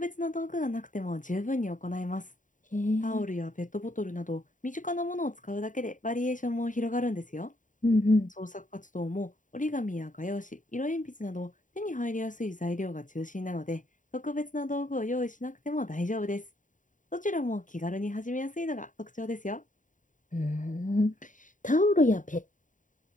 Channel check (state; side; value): late; right; 0.37 ms